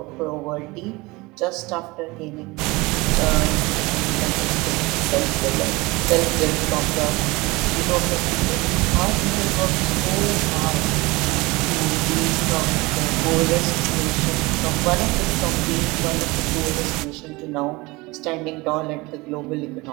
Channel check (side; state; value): left; quieter; 23.2 dB